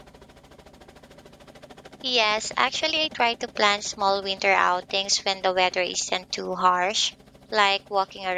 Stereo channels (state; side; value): identical; both; correlation 1.00